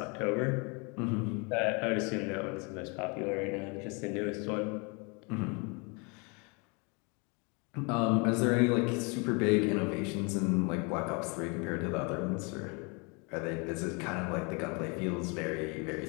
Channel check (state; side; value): quieter; right; 31.7 dB